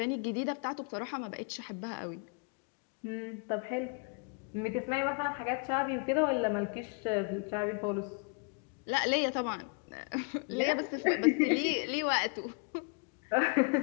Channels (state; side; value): quieter; right; 35.5 dB